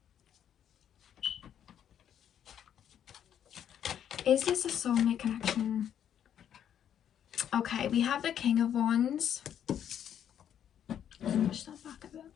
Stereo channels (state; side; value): quieter; right; 9.5 dB